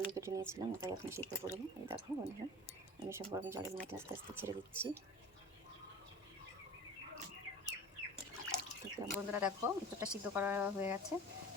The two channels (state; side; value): normal; both; correlation 0.39